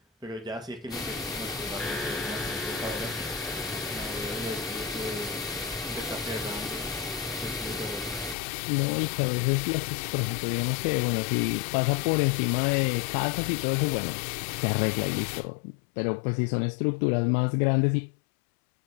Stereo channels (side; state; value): right; drops out; at 8.3 s